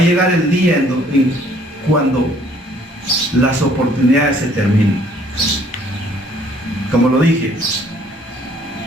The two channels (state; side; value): normal; both; correlation 0.60